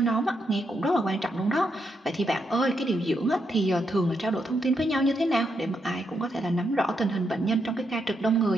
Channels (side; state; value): both; normal; correlation 0.80